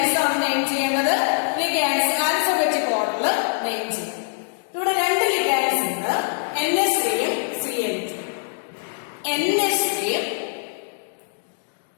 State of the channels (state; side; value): silent; right; digital silence